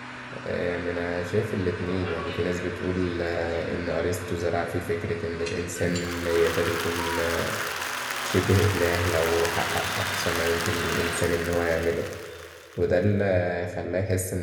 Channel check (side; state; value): both; identical; correlation 1.00